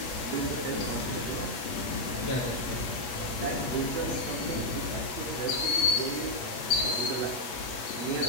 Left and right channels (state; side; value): late; right; 8.3 ms